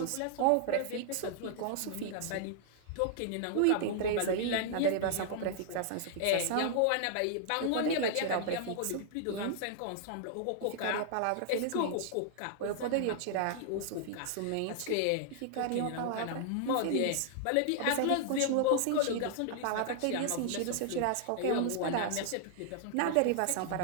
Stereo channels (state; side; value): different; both; correlation -0.01